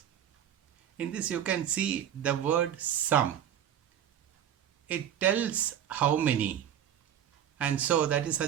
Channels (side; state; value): left; quieter; 10.0 dB